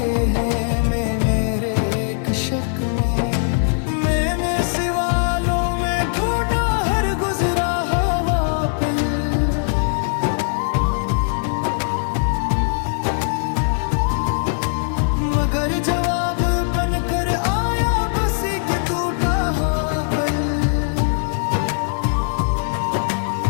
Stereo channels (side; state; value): right; silent; digital silence